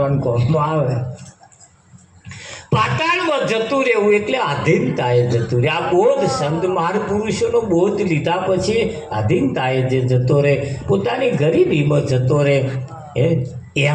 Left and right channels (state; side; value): identical; both; correlation 1.00